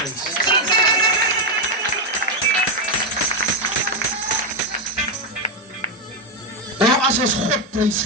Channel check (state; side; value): normal; both; correlation 0.04